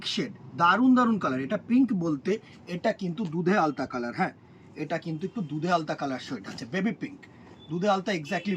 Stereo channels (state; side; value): identical; both; correlation 1.00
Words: শেড, দারুণ দারুণ কালার। এটা পিঙ্ক বলতে এটা কিন্তু দুধে আলতা কালার। হ্যাঁ, এটা কিন্তু একটু দুধে আলতা কালার শেড আছে, বেবি পিঙ্ক। দুধে আলতা এক্স্যাক্টলি